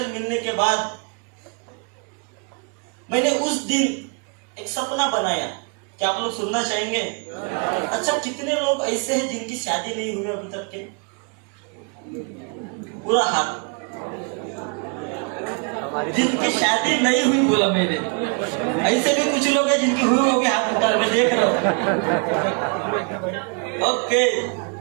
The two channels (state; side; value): quieter; left; 36.7 dB